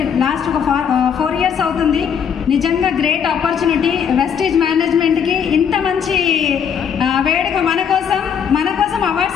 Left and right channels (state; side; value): quieter; right; 7.6 dB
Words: లాస్ట్ ఒక 4 years అవుతుంది. నిజంగా గ్రేట్ ఆపర్చునిటీ. వెస్టీజ్ మేనేజ్మెంట్కి ఇంత మంచి వేడుక మన కోసం